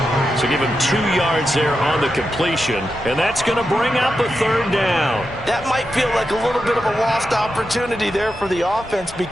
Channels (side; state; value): both; normal; correlation 0.88